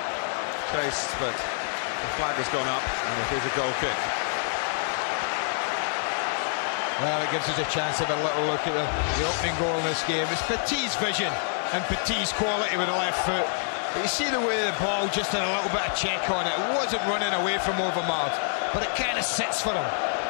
chased, but the flag has gone up and it is a goal kick. Well, it gives us a chance to have a little look at the opening goal in this game. It's Petit's vision and Petit's quality with the left foot. But you see the way the ball just had a little bit of check on it. It wasn't running away from Overmars, but it kind of sits for him.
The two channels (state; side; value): silent; right; digital silence